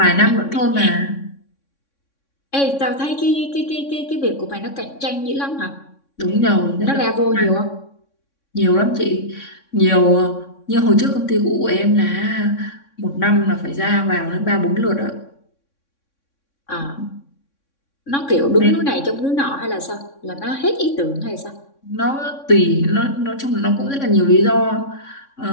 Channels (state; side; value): late; right; 3.6 ms